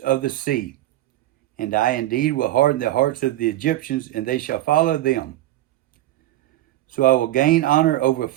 of the sea. And I indeed will harden the hearts of the Egyptians, and they shall follow them. So I will gain honor over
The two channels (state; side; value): quieter; left; 15.2 dB